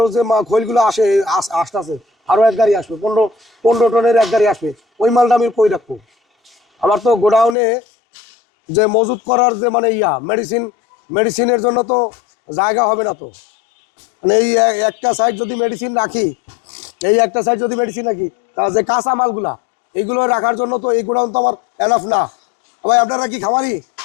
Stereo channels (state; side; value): drops out; right; at 7.6 s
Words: যে খৈলগুলো আসে আসতেছে, আরও এক গাড়ি আসবে, 15 টনের এক গাড়ি আসবে। ওই মালটা আমি কই রাখবো? আমার তো গোডাউনে যে মজুত করার যে মানে মেডিসিনের জন্য তো জায়গা হবে না। তো মানে এই একটা সাইড যদি মেডিসিন রাখি, তাহলে যে কাঁচা মালগুলা এইগুলো রাখার জন্য তো এই গোডাউন তো আমার এনাফ না। ভাই আপনারা কি খামারি?